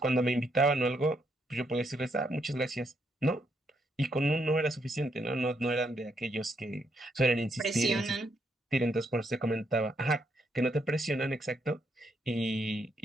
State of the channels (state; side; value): normal; both; correlation 0.76